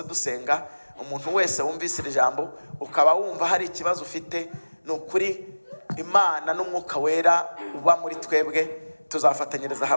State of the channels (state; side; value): inverted; both; correlation -1.00